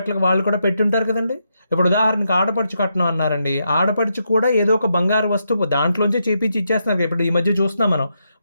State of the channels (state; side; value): inverted; both; correlation -0.82